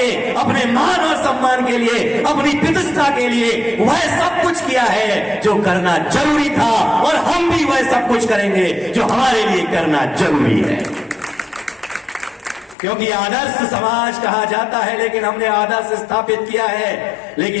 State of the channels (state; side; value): drops out; right; at 12.8 s